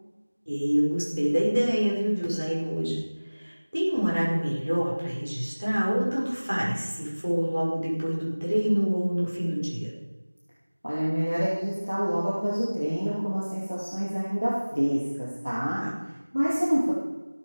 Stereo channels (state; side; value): inverted; both; correlation -1.00